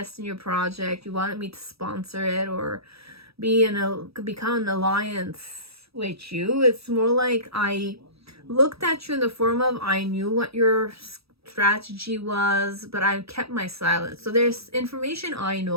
in your project, you wanted me to sponsor it or become an alliance with you, it's more like I looked at you in the form of I knew what your strategy was, but I kept my silence. So there's information I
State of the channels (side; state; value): left; late; 0.77 ms